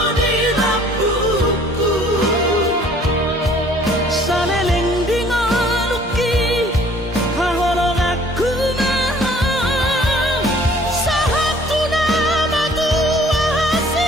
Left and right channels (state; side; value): normal; both; correlation 0.55